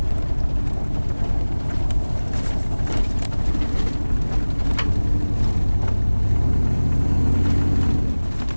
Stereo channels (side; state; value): both; inverted; correlation -1.00